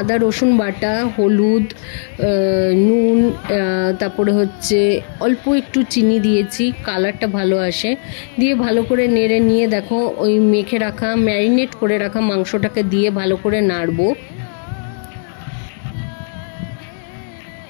রসুন বাটা, হলুদ, নুন, তারপরে হচ্ছে অল্প একটু চিনি দিয়েছি, কালারটা ভালো আসে। দিয়ে ভালো করে নেড়ে নিয়ে দেখো ওই মেখে রাখা, ম্যারিনেট করে রাখা মাংসটাকে দিয়ে ভালো করে নাড়বো।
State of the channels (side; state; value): right; silent; digital silence